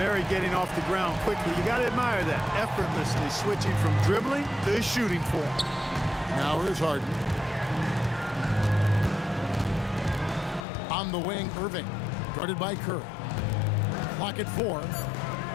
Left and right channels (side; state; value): right; drops out; at 10.7 s